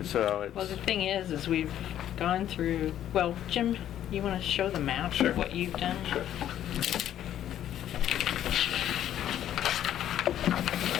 so Well, the it's, thing is we've gone through, well, Jim, you want to show the map Sure. of what you've done? Sure.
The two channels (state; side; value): quieter; right; 11.2 dB